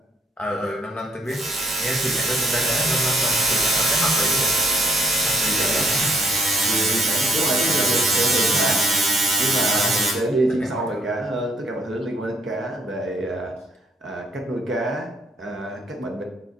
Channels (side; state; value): both; normal; correlation 0.69